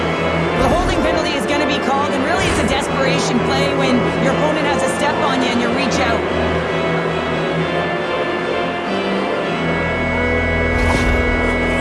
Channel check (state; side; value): identical; both; correlation 1.00